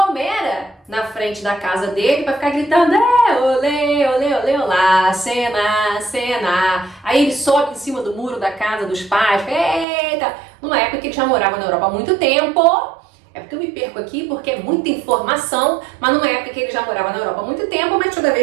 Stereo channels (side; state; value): left; drops out; at 9.9 s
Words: na frente da casa dele para ficar gritando olê, olê, olê, olá, Senna, Senna. Aí ele sobe em cima do muro da casa dos pais, eita, numa época que ele já morava na Europa há muito tempo. É porque eu me perco aqui porque é muita informação, mas numa época que ele já morava na Europa há muito tempo, mas toda